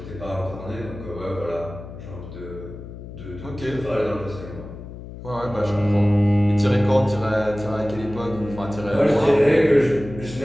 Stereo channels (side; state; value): left; noise; hum, 13 dB below the sound